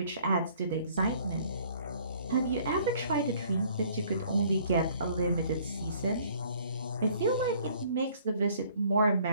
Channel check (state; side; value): inverted; both; correlation -0.58